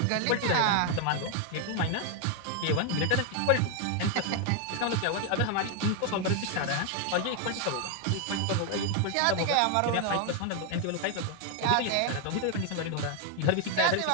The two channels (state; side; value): different; both; correlation 0.00